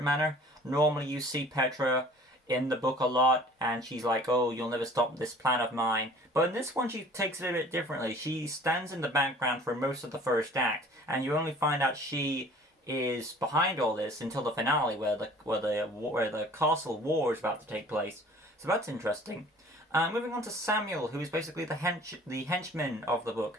manner. Normally, you see Petra in the book a lot, and she's like, "Oh, you'll never stop this plan of mine." But in this one, she takes it a bit differently. She stands in the background for most of the first act, and you only find out she is behind all this until the finale, where the castle war is about to take place. So that's interesting. Moving on to Samuel, who is basically the henchman of the book,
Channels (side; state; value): both; normal; correlation 0.49